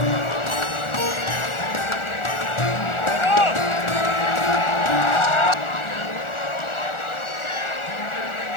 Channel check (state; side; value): late; right; 1.4 ms